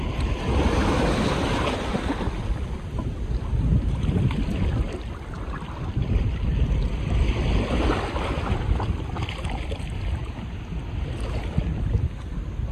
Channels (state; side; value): identical; both; correlation 1.00